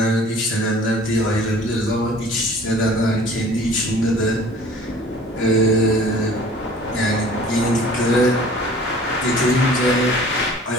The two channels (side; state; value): both; normal; correlation 0.48